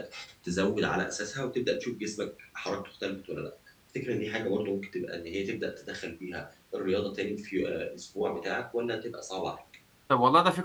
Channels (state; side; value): identical; both; correlation 1.00